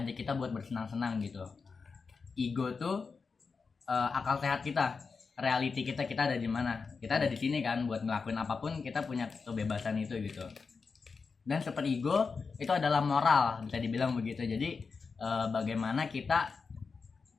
kita buat bersenang-senang gitu. Ego tuh akal sehat kita, reality kita ada di mana, kita ada di sini kan, buat ngelakuin apapun kita punya kebebasan itu gitu. Dan super ego itu adalah moral, bisa dibilang begitu. Jadi bagaimana kita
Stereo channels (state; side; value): quieter; right; 4.9 dB